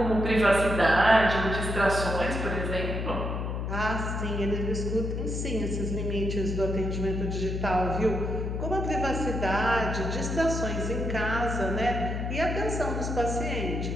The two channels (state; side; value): noise; left; hum, 2 dB below the sound